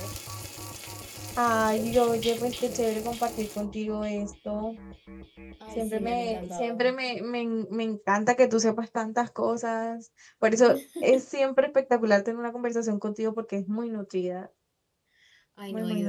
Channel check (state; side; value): identical; both; correlation 1.00